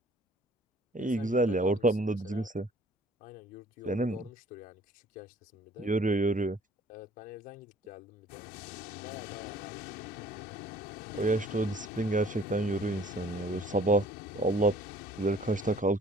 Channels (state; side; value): normal; both; correlation 0.55